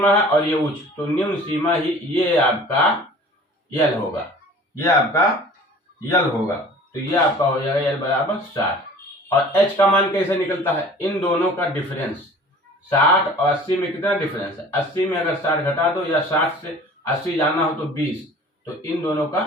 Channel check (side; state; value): both; normal; correlation 0.46